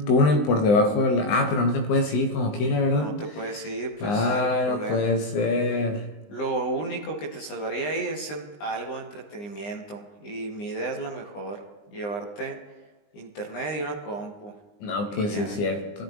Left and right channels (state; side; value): late; right; 20 ms